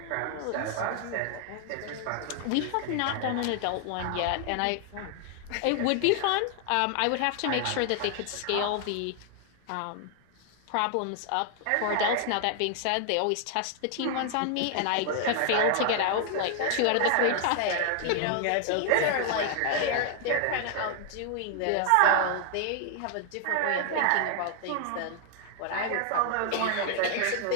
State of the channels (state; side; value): different; both; correlation 0.00